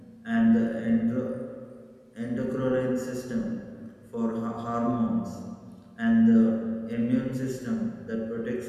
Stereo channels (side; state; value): both; identical; correlation 1.00